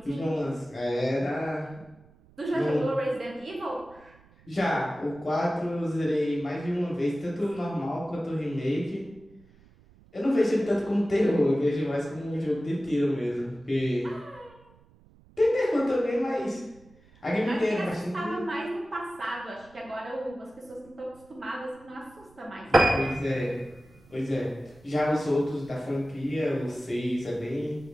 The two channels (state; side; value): noise; right; rumble, 27 dB below the sound